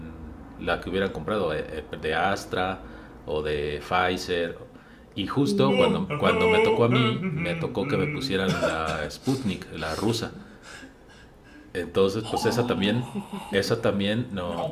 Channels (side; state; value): both; identical; correlation 1.00